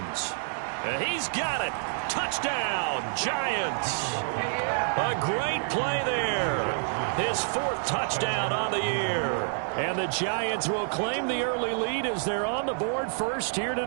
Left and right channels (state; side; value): silent; left; digital silence